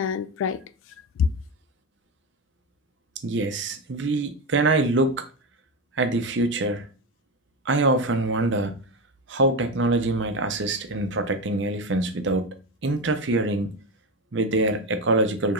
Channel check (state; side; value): normal; both; correlation 0.16